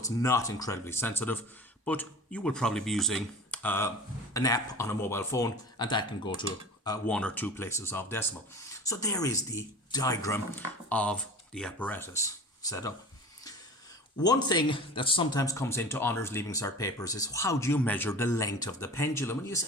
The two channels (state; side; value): normal; both; correlation 0.37